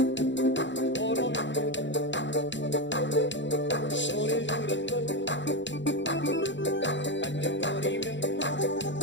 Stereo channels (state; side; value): late; right; 0.53 ms